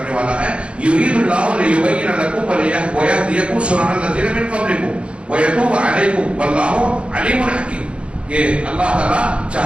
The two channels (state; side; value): late; left; 0.058 ms